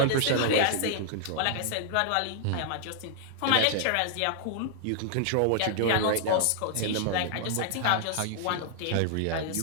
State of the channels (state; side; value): different; both; correlation -0.01